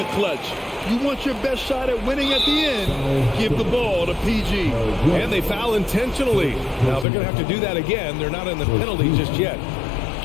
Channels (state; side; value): drops out; right; at 7.1 s